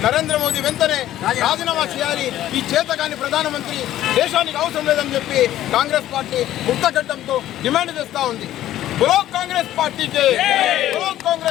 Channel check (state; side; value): quieter; right; 13.2 dB